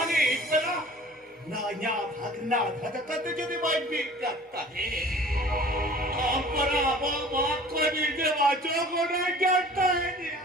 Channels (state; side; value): normal; both; correlation 0.46